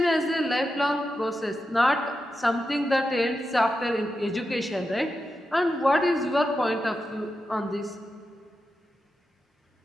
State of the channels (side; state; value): both; normal; correlation 0.89